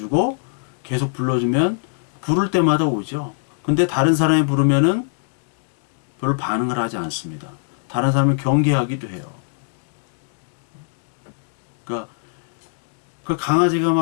계속 불러주면 부를 때마다 오죠. 근데 다른 사람이 부르면은 별로 반응을 하지 않습니다. 다른 사람을 경계하기도 해요. 그러니까 그 강아지가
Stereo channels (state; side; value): silent; right; 64 dB below the other